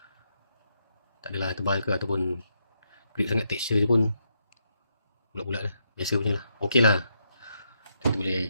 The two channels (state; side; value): inverted; both; correlation -0.80